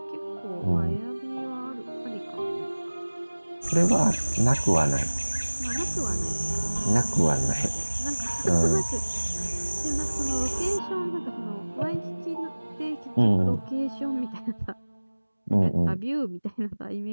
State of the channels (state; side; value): inverted; both; correlation -1.00